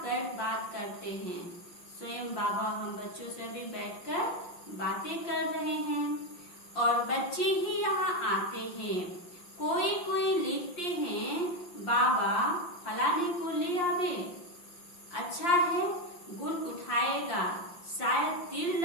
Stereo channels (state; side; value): late; right; 5.7 ms